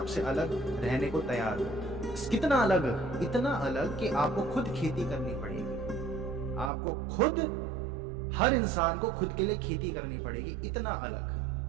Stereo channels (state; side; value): drops out; left; at 6.7 s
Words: अलग रहने को तैयार हो। कितना अलग? इतना अलग कि आपको खुद खेती करनी पड़ेगी, आपको खुद, हर इंसान को खुद के लिए खेती करनी पड़ेगी, इतना